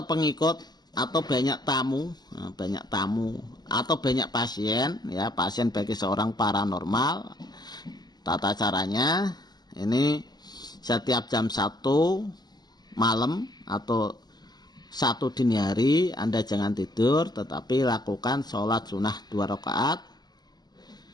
pengikut atau banyak tamu atau banyak pasien ya, pasien bagi seorang paranormal. Tata caranya ini setiap jam 1 malam atau 1 dini hari Anda jangan tidur, tetapi lakukan sholat sunnah 2 rakaat.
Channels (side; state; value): right; late; 0.20 ms